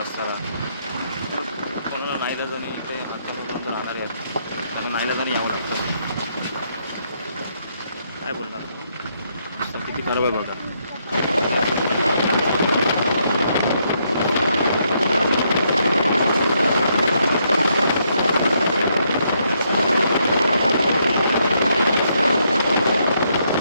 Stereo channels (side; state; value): both; inverted; correlation -0.75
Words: रस्त्याला. कोणाला नाईलाजाने इथे हातामधून राहणारे आहेत, त्यांना नाईलाजाने यावं लागतं. काय बोलणार, रस्ता किती खराब आहे बघा.